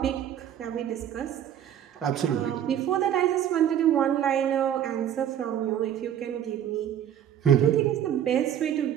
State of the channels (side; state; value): left; quieter; 10.1 dB